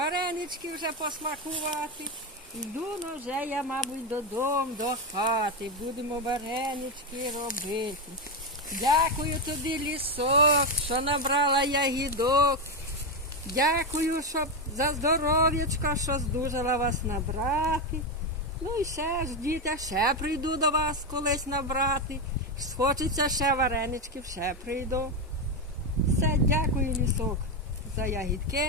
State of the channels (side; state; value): both; normal; correlation 0.10